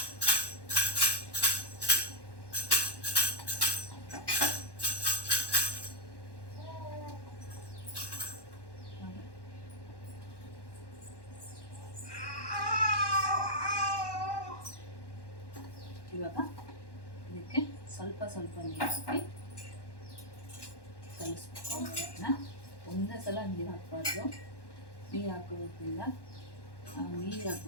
ಇವಾಗ ಇದಕ್ಕೆ ಸ್ವಲ್ಪ ಸ್ವಲ್ಪ ನೀರು ಹಾಕಿ ಕಲಿಸ್ಬೇಕು. ಒಂದೇ ಸಲ ನೀರು ಹಾಕಬಾರ್ದು, ನೀರು ಹಾಕೋದ್ರಿಂದ ನೀರು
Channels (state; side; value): late; right; 1.1 ms